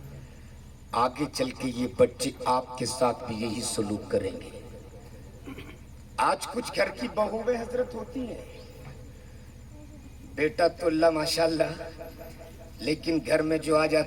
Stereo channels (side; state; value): both; identical; correlation 1.00